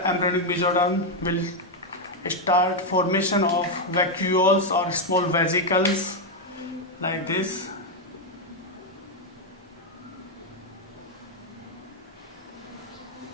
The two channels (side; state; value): both; normal; correlation 0.02